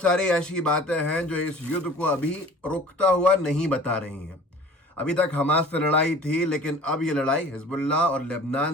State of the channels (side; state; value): both; normal; correlation 0.46